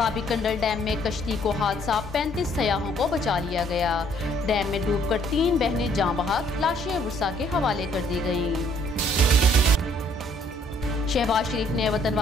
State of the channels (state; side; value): normal; both; correlation 0.64